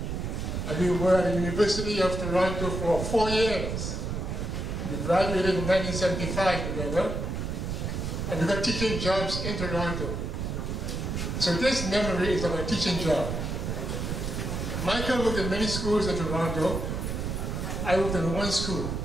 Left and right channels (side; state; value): right; noise; rumble, 3 dB below the sound